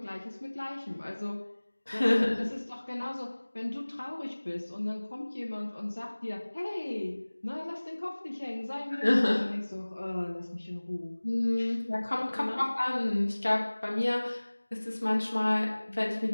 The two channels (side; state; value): both; inverted; correlation -1.00